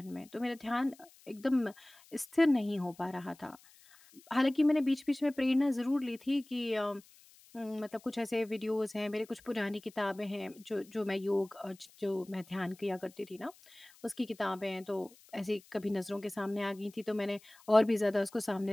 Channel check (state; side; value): noise; left; hiss, 26 dB below the sound